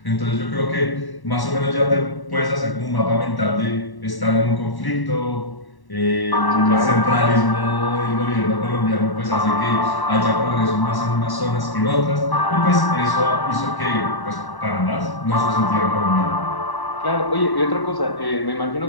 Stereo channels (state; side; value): late; right; 1.1 ms